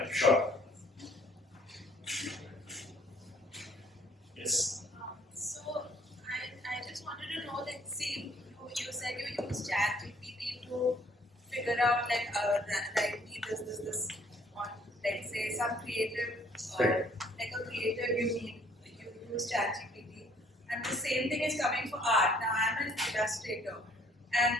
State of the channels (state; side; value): normal; both; correlation 0.60